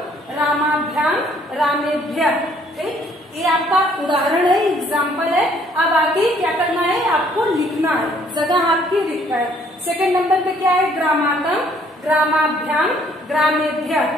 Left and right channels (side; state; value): both; normal; correlation 0.63